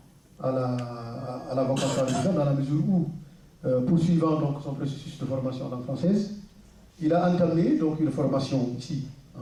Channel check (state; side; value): identical; both; correlation 1.00